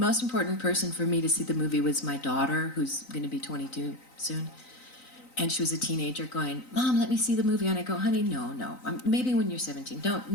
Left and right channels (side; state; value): right; late; 3.9 ms